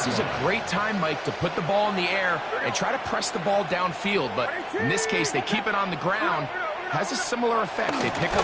is a great time, Mike, to put the ball in the air and try to press the ball downfield. But in this case, they keep it on the ground. Has a similar effect. They pick up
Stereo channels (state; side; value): identical; both; correlation 1.00